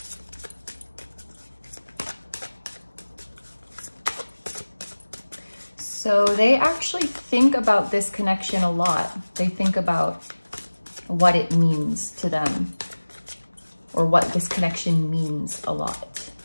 So they actually think about this connection a lot. They think about what it means to them, or what this connection means a lot.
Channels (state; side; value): inverted; both; correlation -1.00